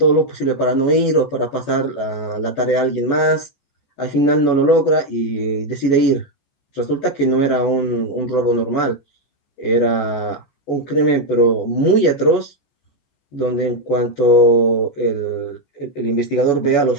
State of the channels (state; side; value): late; right; 14 ms